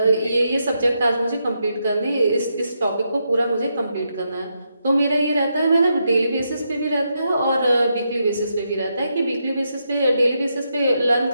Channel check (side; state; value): both; inverted; correlation -0.82